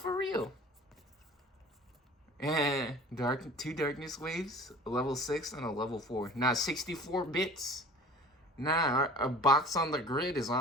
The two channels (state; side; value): normal; both; correlation 0.43